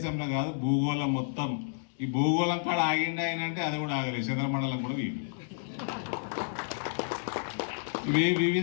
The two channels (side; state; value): right; silent; 58 dB below the other